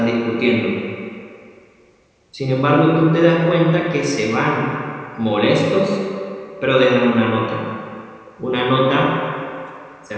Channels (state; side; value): identical; both; correlation 1.00